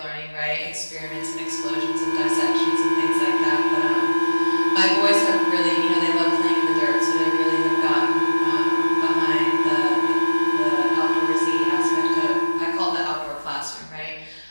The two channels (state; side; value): inverted; both; correlation -1.00